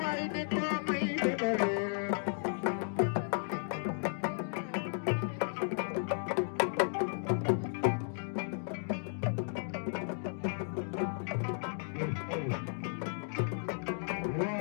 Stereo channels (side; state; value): right; silent; digital silence